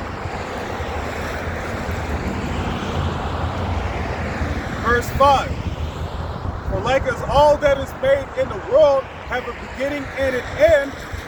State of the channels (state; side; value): identical; both; correlation 1.00